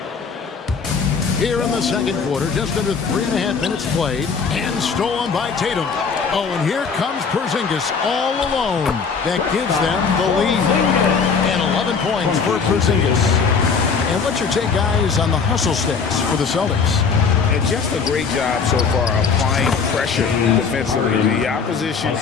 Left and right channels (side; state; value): right; quieter; 5.5 dB